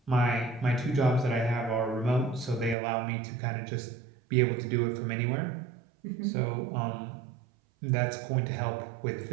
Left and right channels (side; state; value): left; drops out; at 2.8 s